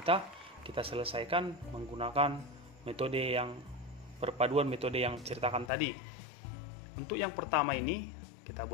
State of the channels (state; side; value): drops out; right; at 5.7 s